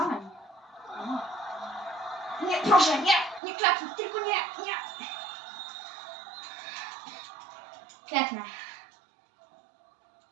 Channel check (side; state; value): left; drops out; at 3.4 s